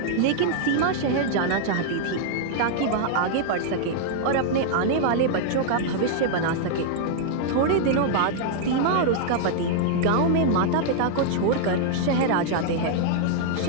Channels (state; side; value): different; both; correlation -0.01